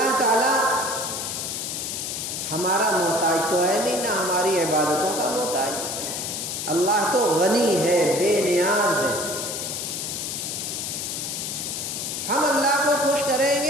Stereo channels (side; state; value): left; noise; hiss, 4 dB below the sound